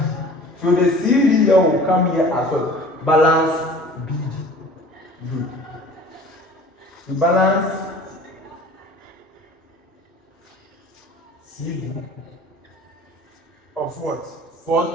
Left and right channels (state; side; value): normal; both; correlation 0.45